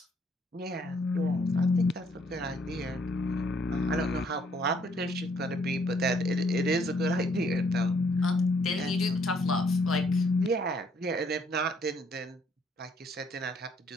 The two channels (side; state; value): both; normal; correlation 0.67